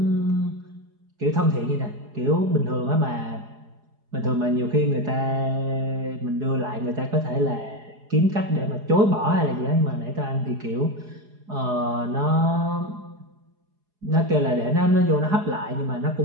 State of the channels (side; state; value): left; late; 4.8 ms